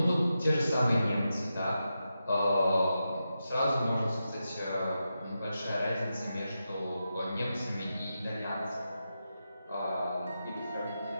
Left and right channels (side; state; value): both; inverted; correlation -0.89